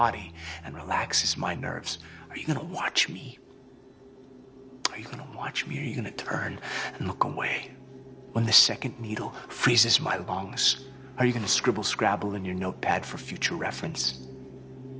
and relaxes my nerves. Are you gonna watch me? Are you gonna watch me, or are you gonna turn and look away? When the second needle freezes my lungs, are you gonna scribble scrabble in your notepad for future reference?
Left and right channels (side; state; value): both; identical; correlation 1.00